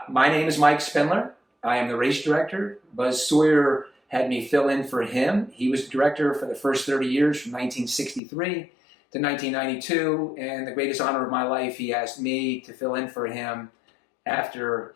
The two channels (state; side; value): drops out; right; at 8.2 s